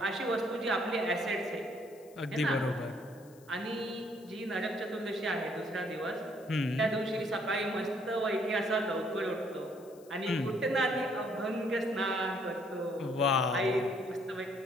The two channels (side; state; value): left; noise; hiss, 26 dB below the sound